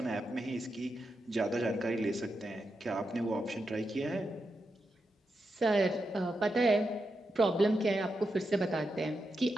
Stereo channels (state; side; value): normal; both; correlation 0.86